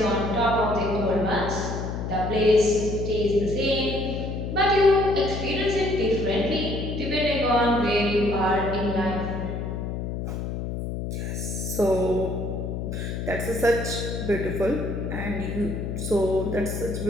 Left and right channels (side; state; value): left; noise; hum, 4 dB below the sound